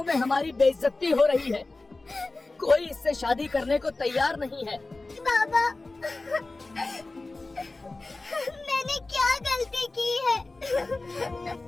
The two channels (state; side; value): quieter; right; 3.3 dB